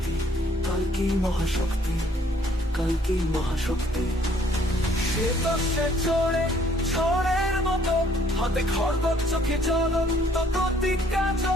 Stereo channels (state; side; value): normal; both; correlation 0.62